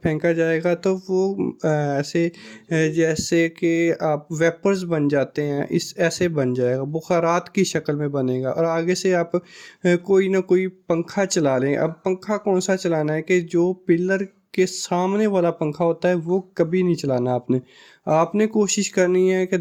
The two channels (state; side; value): identical; both; correlation 1.00